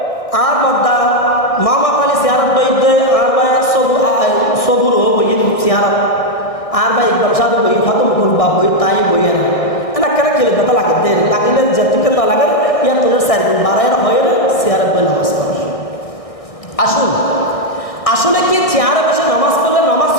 আর বদ্দা মামা পালি চেহারা বইতে, আর ভাই সবুর হো বই চেহারা, আর ভাই ইকবাল সাধু বই খতম করবা বই, তাই বইয়ের না কেন খেলে ব্যথা লাগে, দেরি লাগিলে যেটুকু না লাগে ইয়ার তোলের 4 দিন বাড়াইয়ের হয়ে চেয়ারে বই নামাজ পড়ে। আসুন, আসলে কি চেয়ারে বসে নামাজ পড়লে নামাজ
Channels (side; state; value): right; late; 1.6 ms